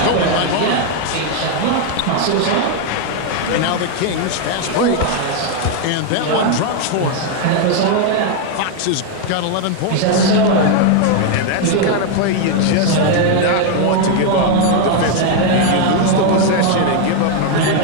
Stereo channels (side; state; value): both; different; correlation 0.01